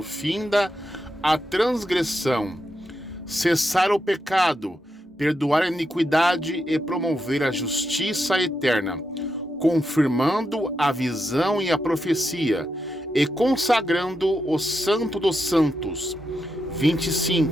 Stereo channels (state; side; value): normal; both; correlation 0.85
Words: finda a transgressão, cessar o pecado, perdoar a iniquidade e promover a justiça eterna, confirmando a visão e a profecia, e consagrando o santo dos santos.